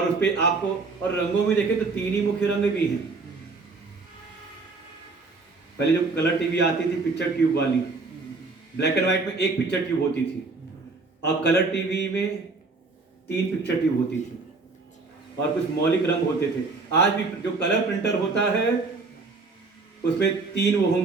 उस पे आपको, और रंगों में देखें तो 3 ही मुख्य रंग भी हैं। पहले जो कलर टीवी आती थी पिक्चर ट्यूब वाली, ब्लैक एंड व्हाइट में एक पिक्चर ट्यूब होती थी, और कलर टीवी में 3 पिक्चर ट्यूब होती थी, और कुछ मौलिक रंग होते थे। आज भी जो कलर प्रिंटर होता है उसमें 3 वो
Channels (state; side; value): quieter; left; 3.9 dB